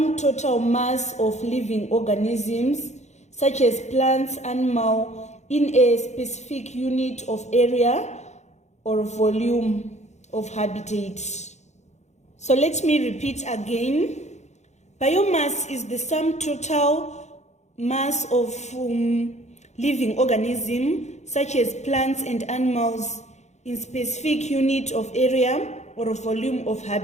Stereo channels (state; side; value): late; right; 0.33 ms